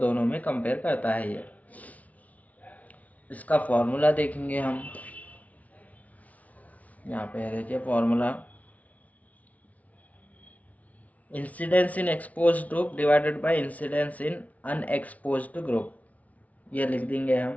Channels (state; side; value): late; right; 0.070 ms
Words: में कंपेयर करता है ये। इसका फॉर्मूला देखेंगे हम। यहाँ पे देखिए formula, incidence in exposed group divided by incidence in unexposed group. ये लिख देंगे